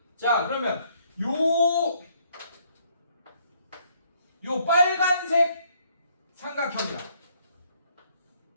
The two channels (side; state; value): both; inverted; correlation -0.66